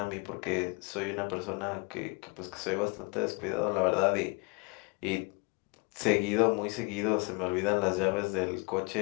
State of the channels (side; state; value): right; quieter; 30.5 dB